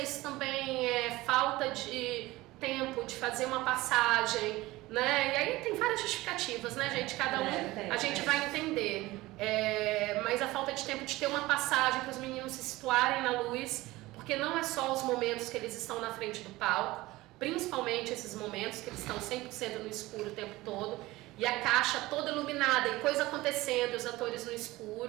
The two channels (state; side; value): quieter; left; 19.1 dB